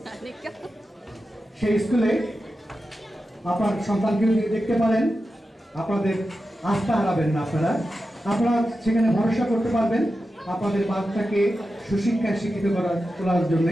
সেই স্কুলে আপনার সন্তানকে দেখতে পারেন। আপনাদের আস্থা হারাবেন না, আপনারা সেখানে ভরসা করতে পারবেন আপনাদের বাচ্চাকে সুশিক্ষায় শিক্ষিত তোলার জন্য।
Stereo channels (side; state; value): both; normal; correlation 0.91